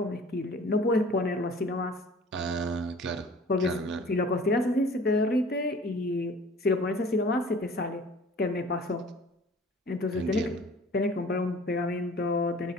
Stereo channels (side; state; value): both; normal; correlation 0.47